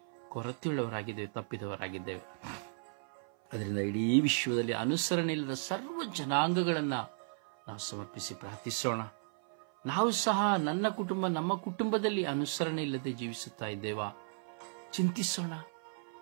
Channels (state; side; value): silent; left; 55 dB below the other